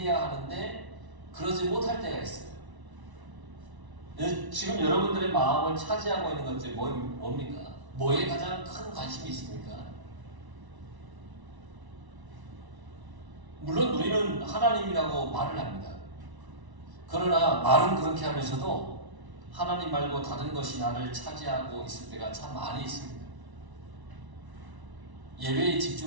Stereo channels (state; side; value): late; left; 1.0 ms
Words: 하는데 그러지 못할 때가 있어요. 지금 여러분들의 마음을 차지하고 있는 것들이 뭡니까? 뭐에 가장 큰 관심이 있습니까? 물론 우리는 하나님이라고 말을 합니다. 그러나 말은 그렇게 하면서도 하나님 말고 다른 것이 나를 차지하고 있을 때가 참 많이 있습니다. 예배에